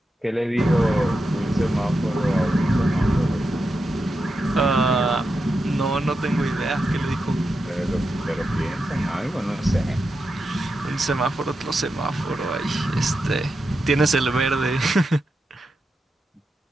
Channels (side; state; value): both; normal; correlation 0.88